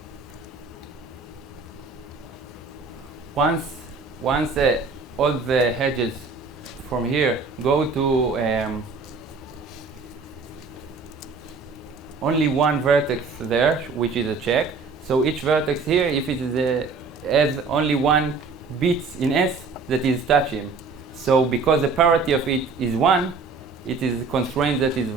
Once all the hedges from here go to only one vertex there, which is a check. So each vertex here, if it is has only one bit in S that is touching. So because the parity of it is 1, it is a constraint that is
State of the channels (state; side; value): quieter; left; 4.4 dB